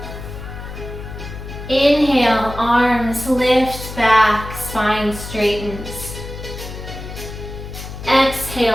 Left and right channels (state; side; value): noise; left; hum, 10 dB below the sound